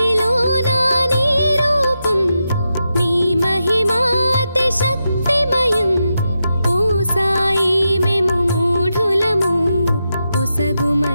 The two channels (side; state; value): both; inverted; correlation -0.87